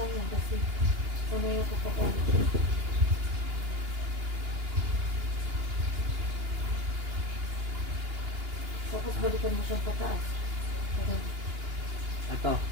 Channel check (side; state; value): left; late; 2.8 ms